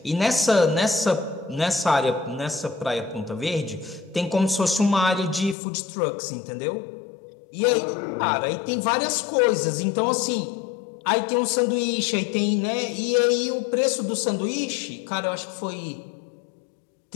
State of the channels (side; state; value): right; drops out; at 5.6 s